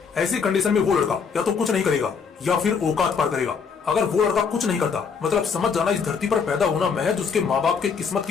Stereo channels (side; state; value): right; quieter; 5.9 dB